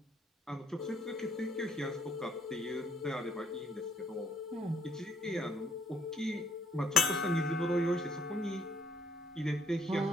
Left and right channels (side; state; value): both; normal; correlation 0.67